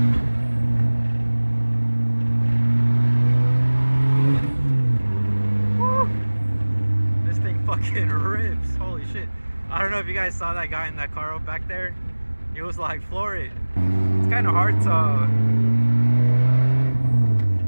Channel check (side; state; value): both; inverted; correlation -1.00